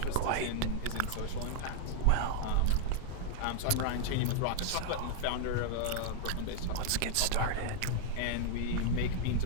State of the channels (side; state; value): both; different; correlation -0.01